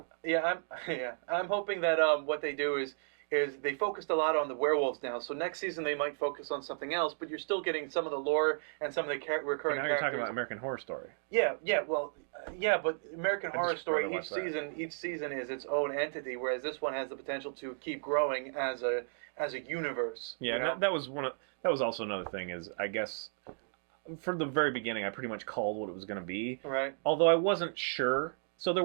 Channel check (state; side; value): silent; left; digital silence